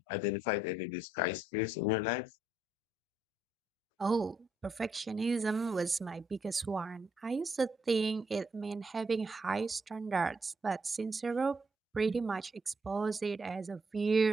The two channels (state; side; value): normal; both; correlation 0.73